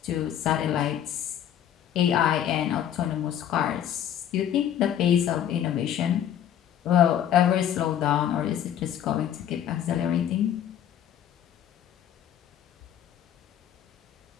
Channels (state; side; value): quieter; right; 10.2 dB